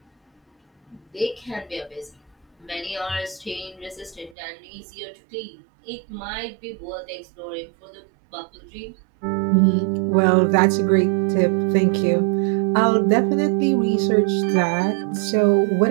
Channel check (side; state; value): left; drops out; at 4.4 s